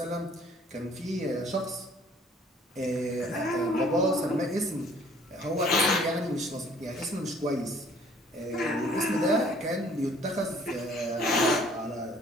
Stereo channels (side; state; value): both; normal; correlation 0.56